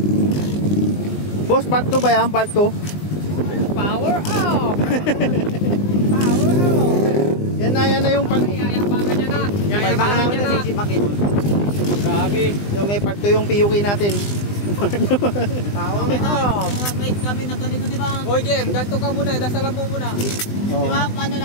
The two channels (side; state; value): right; late; 20 ms